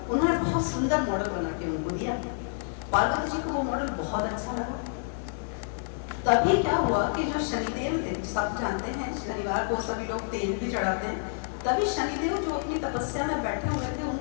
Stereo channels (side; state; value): right; silent; digital silence